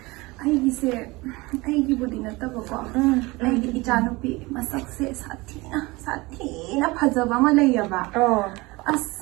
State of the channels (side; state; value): left; quieter; 22.8 dB